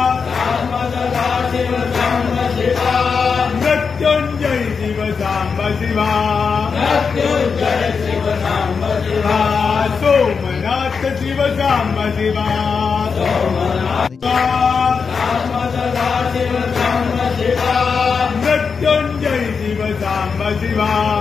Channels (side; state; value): right; quieter; 5.6 dB